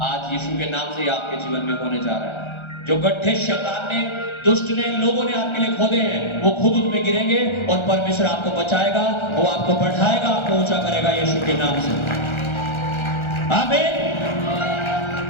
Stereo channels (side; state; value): right; late; 1.4 ms